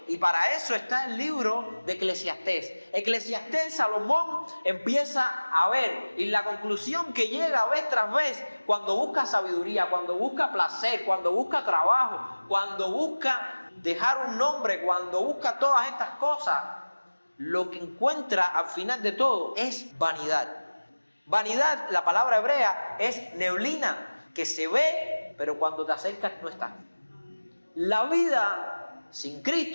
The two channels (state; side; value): inverted; both; correlation -1.00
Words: Y para eso está el libro de Eclesiastés. Eclesiastés, Salomón empieza a ver, y la conclusión que llega vez tras vez, cuando busca sabiduría, cuando busca placer, cuando busca trabajo, cuando busca dejar un nombre, cuando busca todas estas cosas, lo que encuentra al final de todo es vanidad. Vanidad, la palabra hebrea, es neblina, que se ve, pero cuando te acercas no está. La vida sin